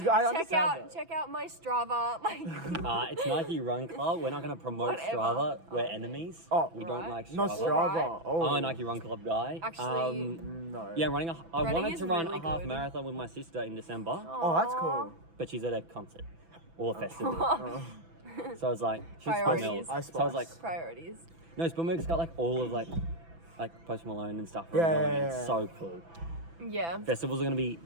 I understand that. check out my Strava. Like, It's Nike Run Club. We're not going to promote Whatever. Strava. We're Oh, enemies. Oh, we don't right. like Strava. Not Strava. Right. Oh. I'm a Nike Run Club guy. Actually, No. Yeah, I Running wanted is to run really a half good. marathon with my sister in December, Oh, that's cool. but she's at a concert or a festival. So I was like, she's Priorities. Spillmills. So I was like, priorities. no, Spillmills got like all of like Post Malone and stuff. Yeah, running. yeah, It's yeah. so cool. Yeah, Festivals are going to be.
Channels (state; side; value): late; left; 6.0 ms